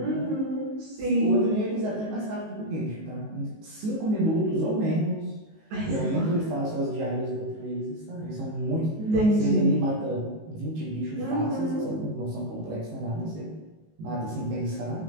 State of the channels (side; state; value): left; late; 19 ms